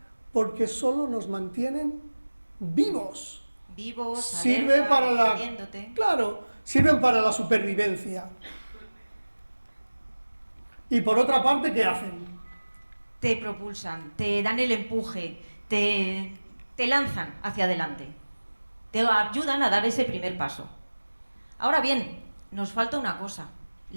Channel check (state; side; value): inverted; both; correlation -1.00